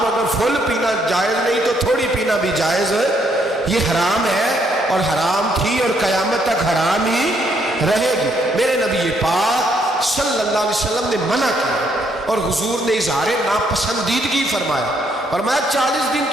اگر فل پینا جائز نہیں تو تھوڑی پینا بھی جائز ہے. یہ حرام ہے اور حرام تھی اور قیامت تک حرام ہی رہے گی. میرے نبی پاک صلی اللہ علیہ وسلم نے منع کیا اور حضور نے اظہار ناپسندیدگی فرمایا. فرمایا 40 دن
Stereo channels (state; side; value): normal; both; correlation 0.71